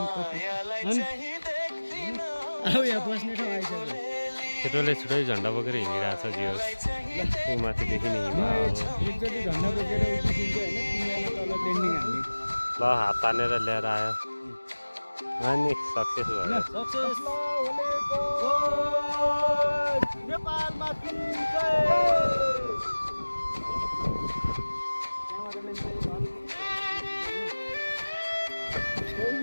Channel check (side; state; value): both; inverted; correlation -1.00